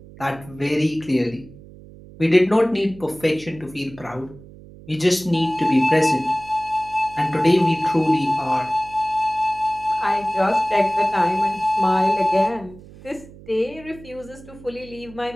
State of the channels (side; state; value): right; noise; hum, 20 dB below the sound